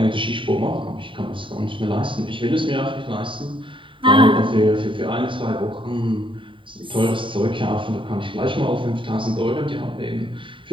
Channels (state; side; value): late; left; 0.25 ms